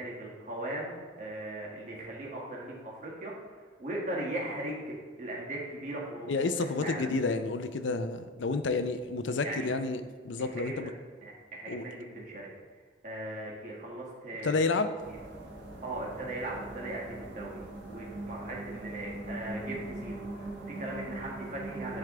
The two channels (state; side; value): normal; both; correlation 0.21